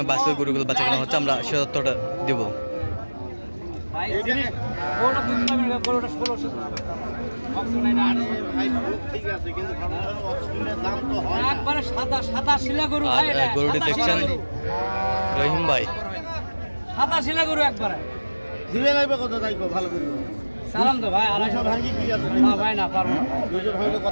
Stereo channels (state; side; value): inverted; both; correlation -1.00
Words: বাছুর গরুগুলো বেচা কেনা হচ্ছে, আমরা সে তথ্যটা দেব। গরুটি দেখছেন রহিম ভাই, সাদা শিলা গরু একবারে দিবে লাগবে কত তাই ভালো করে সালাম তো ভাই। 200 ভাঙি কি আছে না ভাই না পারবো না। 200 ভাঙলে